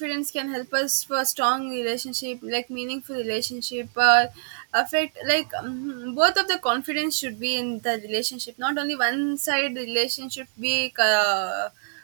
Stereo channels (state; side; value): silent; left; digital silence